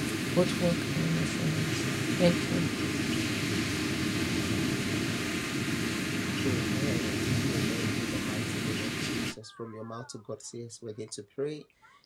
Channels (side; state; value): both; identical; correlation 1.00